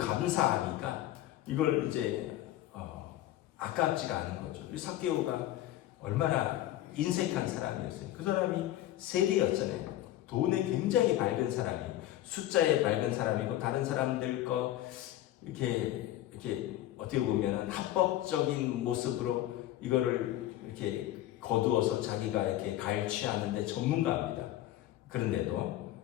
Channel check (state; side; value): quieter; right; 14.0 dB